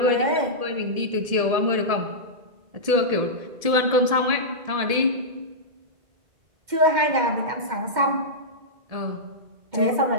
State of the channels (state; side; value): late; left; 1.7 ms